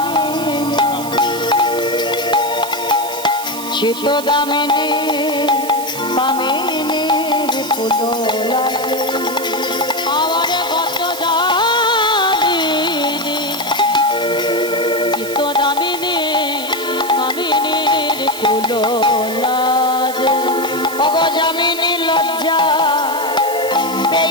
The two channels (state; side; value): noise; right; hiss, 11 dB below the sound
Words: চিত দামিনী পামিনী ফুলো লাগে। আমার কত দামিনী চিত্ত দামিনী কামিনীর কুলো লাজে। ওগো যামিনী লজ্জা